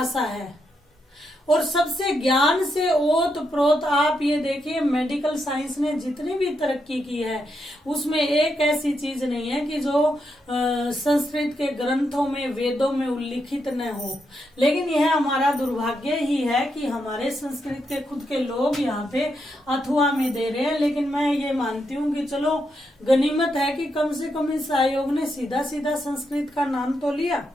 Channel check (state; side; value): normal; both; correlation 0.82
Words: है और सबसे ज्ञान से ओत प्रोत, आप ये देखिए मेडिकल साइंस ने जितनी भी तरक्की की है उसमें एक ऐसी चीज नहीं है कि जो संस्कृत के ग्रंथों में वेदों में उल्लिखित न हो। लेकिन यह हमारा दुर्भाग्य ही है कि हमारे संस्कृत के खुद के लोग यहाँ पे अथवा में दे रहे हैं। लेकिन मैं ये मानती हूँ कि चलो गनीमत है कि कम से कम इस आयोग ने सीधा सीधा संस्कृत का नाम तो लिया।